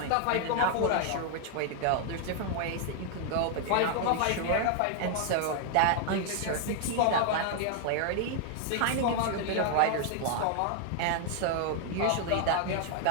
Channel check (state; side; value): different; both; correlation 0.00